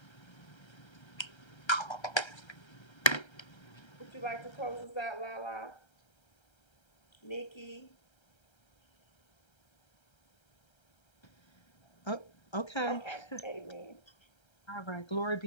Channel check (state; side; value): late; right; 1.3 ms